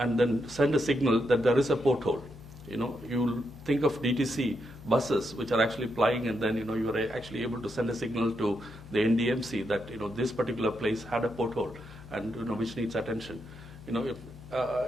then send a signal that there is a porthole. You think of DTC buses which are actually plying, and then you are actually able to send a signal to the NDMC that this particular place had a porthole and which needs attention.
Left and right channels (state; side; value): noise; left; hum, 18 dB below the sound